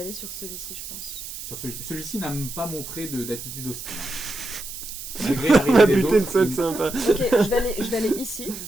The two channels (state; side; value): noise; right; hiss, 10 dB below the sound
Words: sur celui-ci, je pense. Sur celui-ci n'a pas montré d'attitude hostile. Hein. Malgré On a l'arrivée des buté le autres, seul sympa. Ok, je vais aller ici.